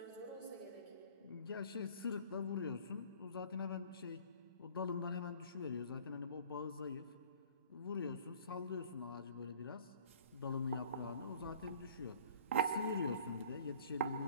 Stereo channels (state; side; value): inverted; both; correlation -0.52